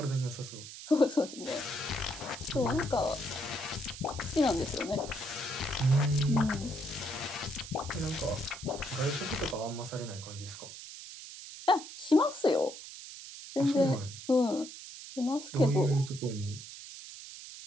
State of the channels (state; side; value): noise; right; hiss, 12 dB below the sound